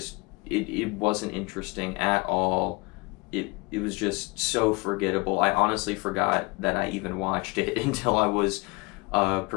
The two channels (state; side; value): quieter; right; 27.5 dB